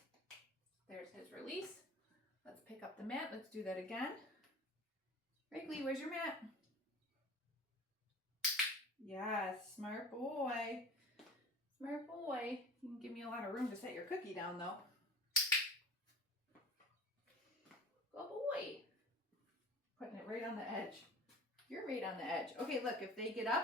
There's his release. Let's pick up the mat. Let's do that again. Wrigley, where's your mat? Yes, smart boy. Smart boy. You can give me a lot of room to set your cookie down, though. Good boy. Putting it right on the edge. You're right on the edge. Okay, look, if they get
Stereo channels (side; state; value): both; normal; correlation 0.39